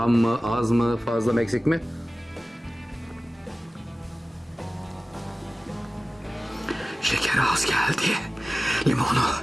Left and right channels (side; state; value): both; normal; correlation 0.97